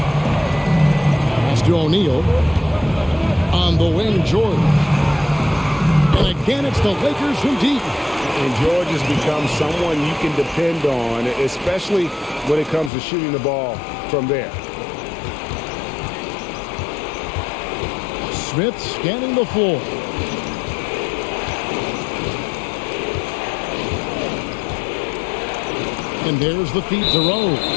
Pass to O'Neal. On the wing, George. And again, it's the Lakers from deep. And George has become someone you can depend on, especially when it comes to shooting the ball from there. Smith scanning the floor. And there's the feed to Rose.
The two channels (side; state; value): right; drops out; at 12.9 s